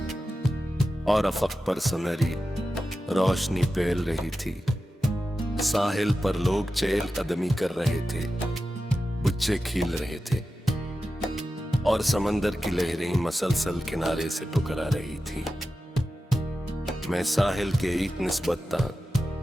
और अफक पर सुनहरी रोशनी फैल रही थी। साहिल पर लोग चहल कदमी कर रहे थे, बुच्चे खिल रहे थे और समंदर की लहरें मसलसल किनारे से टकरा रही थी। मैं साहिल के एक निस्बता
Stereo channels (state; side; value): normal; both; correlation 0.92